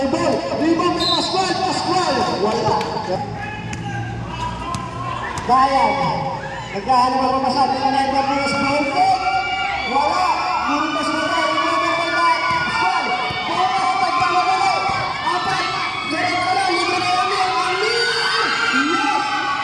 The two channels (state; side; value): identical; both; correlation 1.00